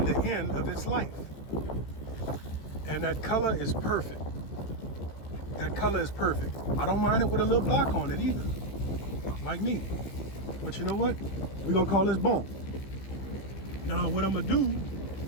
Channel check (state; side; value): late; right; 15 ms